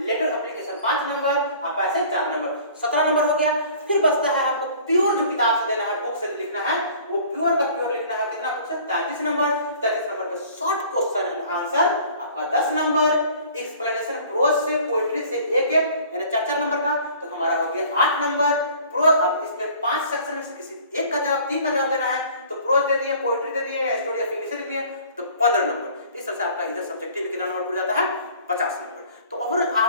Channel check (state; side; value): inverted; both; correlation -0.50